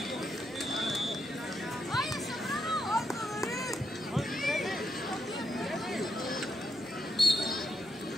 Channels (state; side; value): noise; right; rumble, 27 dB below the sound